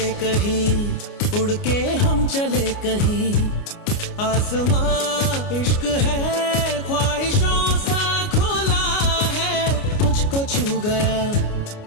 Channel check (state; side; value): late; right; 29 ms